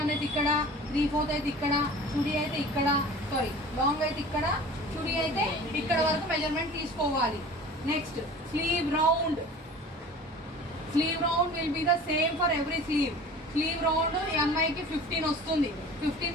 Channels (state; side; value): normal; both; correlation 0.41